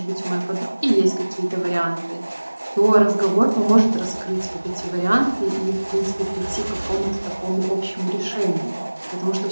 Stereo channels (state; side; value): inverted; both; correlation -1.00